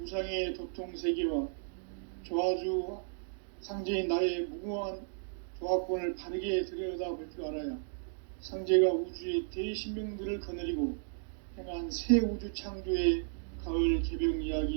도통 세계와 조화주 상제인 나의 무궁한 조합권을 바르게 들여다볼 줄 알아야 상제가 우주의 대신명들을 거느리고 행한 새 우주 창조의 가을 개병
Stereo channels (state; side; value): silent; left; digital silence